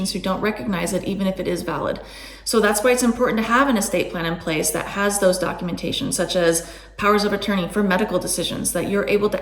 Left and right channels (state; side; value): identical; both; correlation 1.00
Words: who don't recognize it even if it is valid. So that's why it's important to have an estate plan in place that has those documentation, such as powers of attorney for medical decisions, that you're able